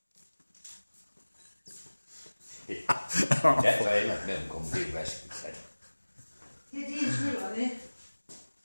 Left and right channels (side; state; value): both; inverted; correlation -1.00